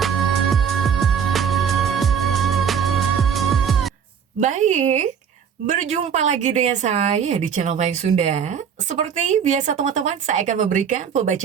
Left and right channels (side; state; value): left; quieter; 7.5 dB